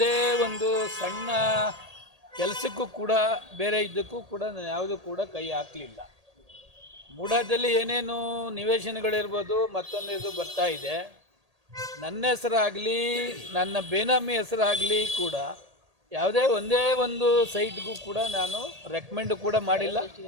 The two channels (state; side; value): late; left; 1.8 ms